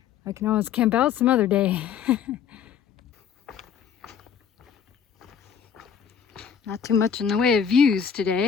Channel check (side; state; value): right; quieter; 7.8 dB